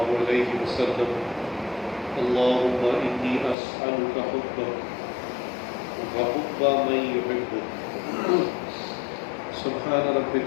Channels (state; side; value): drops out; right; at 3.6 s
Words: عليه وسلم اللهم إني أسألك حبك وحب من يحبك سبحان